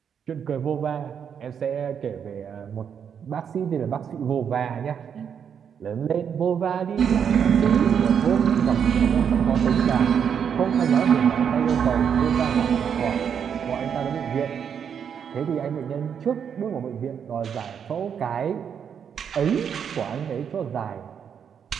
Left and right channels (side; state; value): left; quieter; 7.7 dB